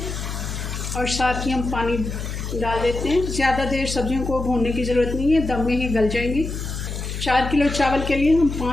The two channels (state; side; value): noise; left; hum, 6 dB below the sound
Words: और साथ ही हम पानी डाल देते हैं। ज़्यादा देर सब्जियों को भूनने की ज़रूरत नहीं है, दम में ही गल जाएंगी। 4 किलो चावल के लिए हम